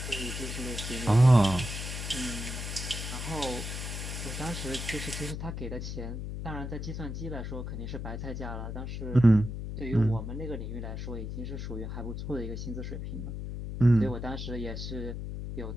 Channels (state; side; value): noise; left; hum, 5 dB below the sound